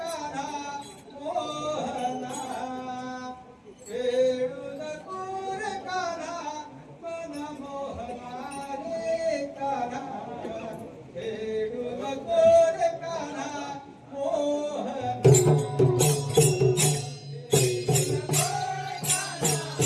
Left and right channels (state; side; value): identical; both; correlation 1.00